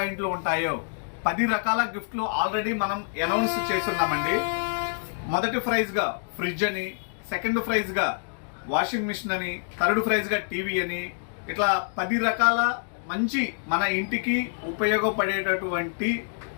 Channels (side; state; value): right; silent; digital silence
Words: ఉంటాయో 10 రకాల గిఫ్ట్లు ఆల్రెడీ మనం అనౌన్స్ చేస్తున్నామండి. మొదటి ప్రైజ్గా ఫ్రిడ్జ్ అని, సెకండ్ ప్రైజ్గా వాషింగ్ మిషన్ అని, థర్డ్ ప్రైజ్గా టీవీ అని, ఇట్లా 10 రకాల మంచి మన ఇంటికి ఉపయోగపడేటటువంటి